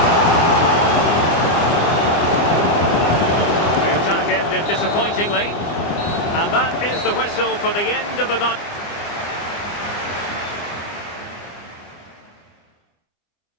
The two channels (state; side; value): late; right; 25 ms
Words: The attack ended disappointingly. And that is the whistle for the end of the night.